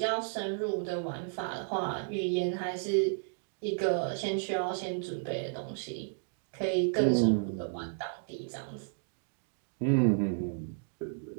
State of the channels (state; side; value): silent; left; digital silence